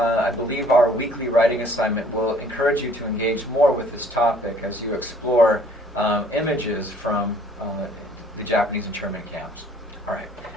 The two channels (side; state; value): both; normal; correlation 0.57